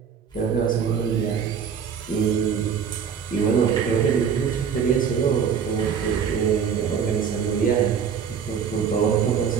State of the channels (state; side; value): quieter; left; 7.1 dB